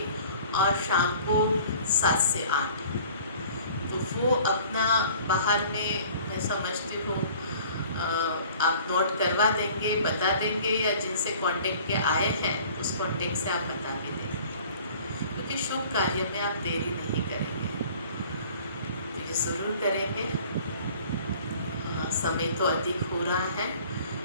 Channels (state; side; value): inverted; both; correlation -0.49